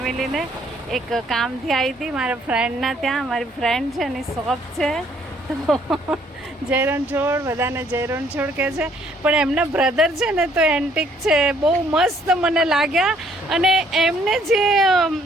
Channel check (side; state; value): both; normal; correlation 0.64